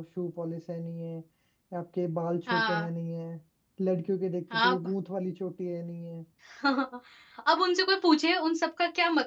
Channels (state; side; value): identical; both; correlation 1.00